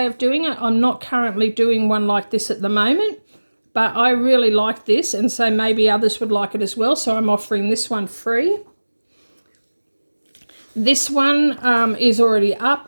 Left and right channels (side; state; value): both; inverted; correlation -1.00